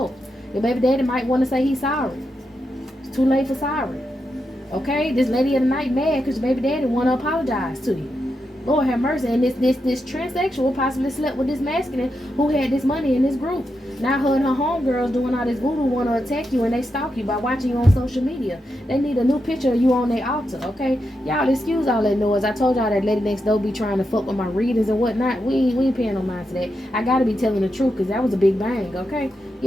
Your baby daddy might want to say he's sorry. It's too late for sorry. Okay, this lady of the night mad because your baby daddy want to apologize to you. Lord have mercy. And this transsexual possibly slept with this masculine who had this money in this group. Now her and her homegirls doing all this voodoo want to attack you, and they stalk you by watching you on social media. They need a new picture of you on their altar, okay? Y'all excuse all that noise. I told y'all that lady next door be trying to fuck with my readings and whatnot. We ain't paying no mind to that. I gotta be telling the truth, because that was a big bang, okay?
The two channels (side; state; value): both; normal; correlation 0.86